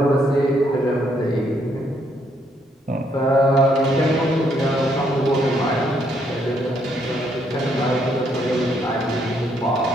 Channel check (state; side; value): normal; both; correlation 0.72